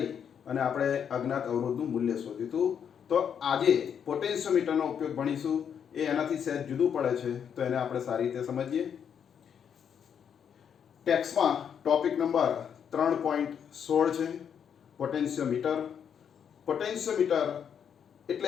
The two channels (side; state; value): right; quieter; 7.9 dB